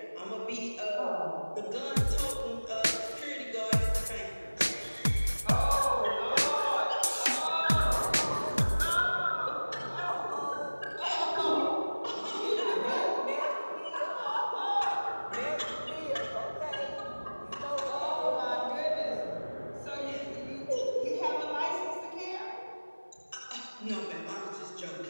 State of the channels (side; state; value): both; inverted; correlation -1.00